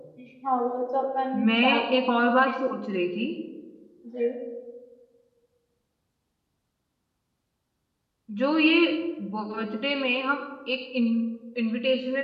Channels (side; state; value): both; identical; correlation 1.00